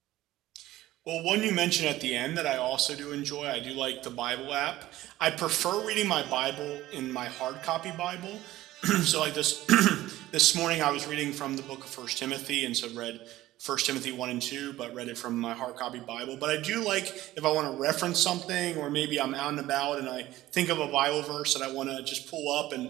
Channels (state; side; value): quieter; left; 15.8 dB